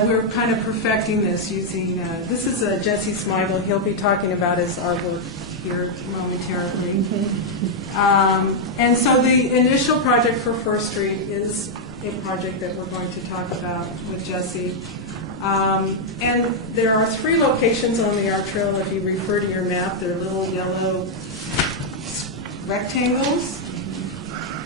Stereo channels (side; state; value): both; normal; correlation -0.02